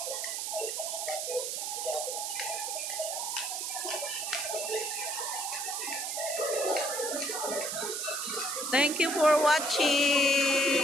thank you for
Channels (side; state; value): right; noise; hiss, 2 dB below the sound